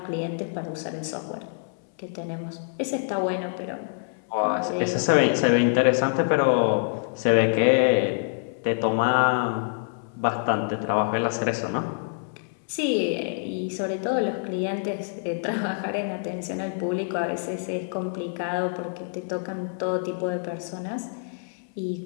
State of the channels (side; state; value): right; silent; 61 dB below the other